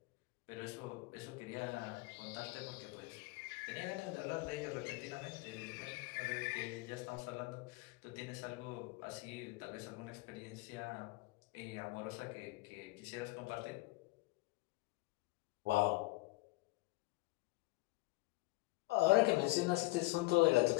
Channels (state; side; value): quieter; right; 21.6 dB